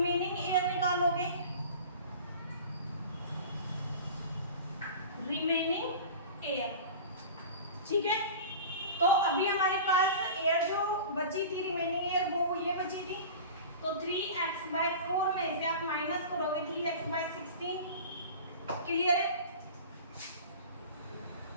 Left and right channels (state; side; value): inverted; both; correlation -0.36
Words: एयर निकालोगे, रिमेनिंग एयर। ठीक है, तो अभी हमारे पास एयर जो बची थी, रिमेनिंग एयर, वो ये बची थी, तो 3x/4 में से आप माइनस करोगे 3x/16। क्लियर है?